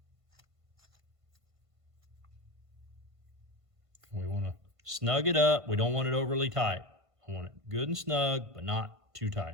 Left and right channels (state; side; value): late; left; 1.5 ms